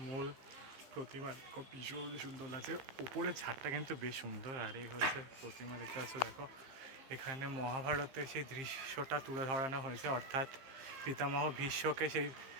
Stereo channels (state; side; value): late; left; 15 ms